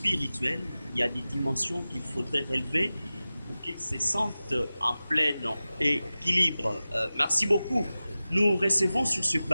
Il y a des dimensions qu'il faudrait relever pour qu'il se sente en plein équilibre. Merci beaucoup. Nous recevons sur ce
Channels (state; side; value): inverted; both; correlation -0.96